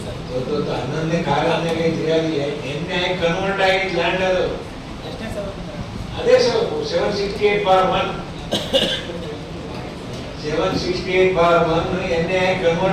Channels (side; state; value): both; identical; correlation 1.00